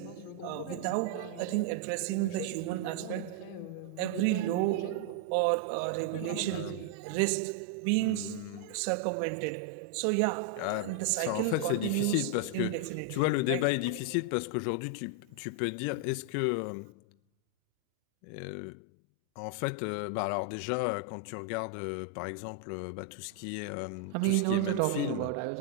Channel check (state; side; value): different; both; correlation 0.00